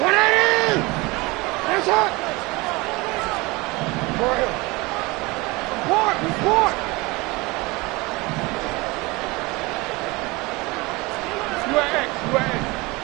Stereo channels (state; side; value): quieter; left; 23.7 dB